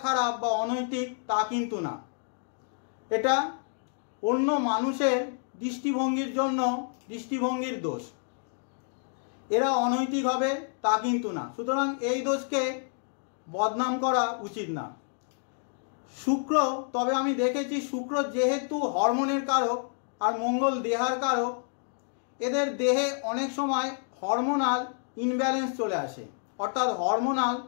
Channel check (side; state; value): right; silent; 59 dB below the other